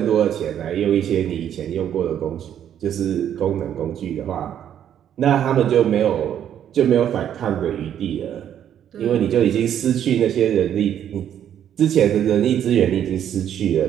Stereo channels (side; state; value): left; quieter; 9.9 dB